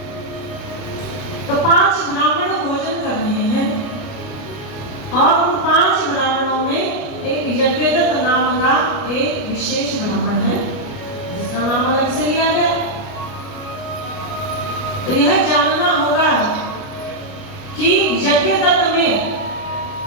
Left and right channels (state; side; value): late; right; 29 ms